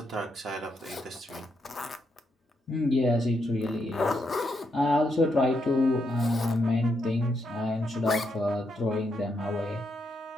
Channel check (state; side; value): normal; both; correlation 0.79